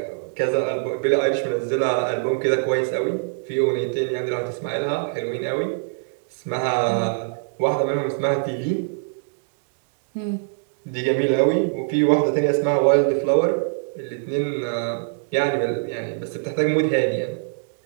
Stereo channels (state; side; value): silent; left; digital silence